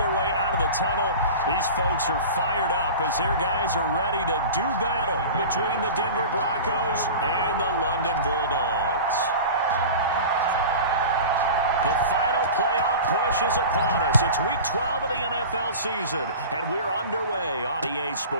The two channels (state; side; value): inverted; both; correlation -0.34